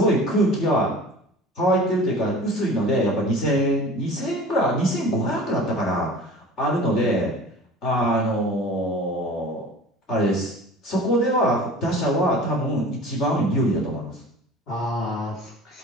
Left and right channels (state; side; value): normal; both; correlation 0.41